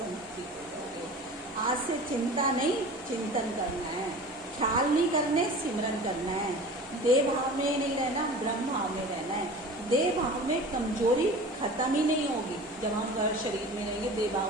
हो जाओगे। आज से चिंता नहीं, चिंतन करना है, ख्याल नहीं करने, सिमरन करना है। देह भाव में नहीं रहना, ब्रह्म भाव में रहना है। देह भाव में कमजोरी खत्म ही नहीं होगी। जब हम शरीर में रहेंगे, देह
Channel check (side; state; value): both; normal; correlation 0.38